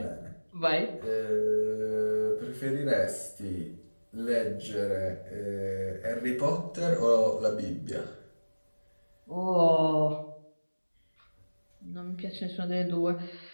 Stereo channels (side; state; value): both; inverted; correlation -1.00